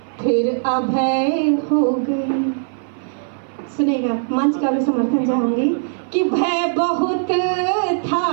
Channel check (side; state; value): left; silent; 58 dB below the other